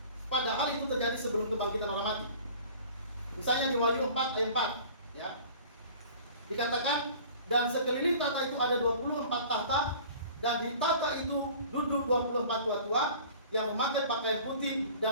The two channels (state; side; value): inverted; both; correlation -0.45